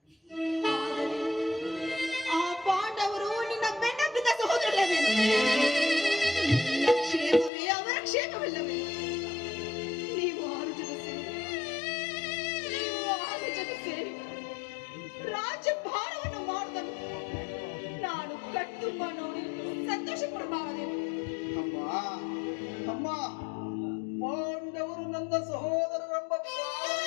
ಆ ಪಾಂಡವರು ನಿನ್ನ ಬೆನ್ನಬ್ಬಿದ ಸಹೋದರಲ್ಲವೇನು? ನಿನ್ನ ಕ್ಷೇಮವೇ ಅವರ ಕ್ಷೇಮವಿಲ್ಲವೇ? ನೀವು ಆರು ಜನ ಸೇರಿ ರಾಜ್ಯಭಾರವನ್ನು ಮಾಡುವುದನ್ನು ನಾನು ಕಟ್ಟುಂಬ ನೋಡಿ ಸಂತೋಷ ಪಡಬಾರದೇನು? ಅಮ್ಮ ಅಮ್ಮ, ಪಾಂಡವರು ನನ್ನ ಸಹೋದರರೆಂಬ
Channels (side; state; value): right; drops out; at 7.5 s